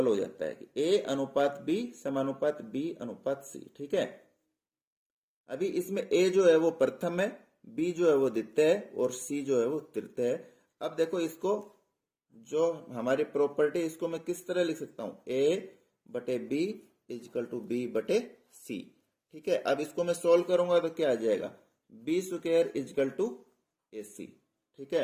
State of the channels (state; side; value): identical; both; correlation 1.00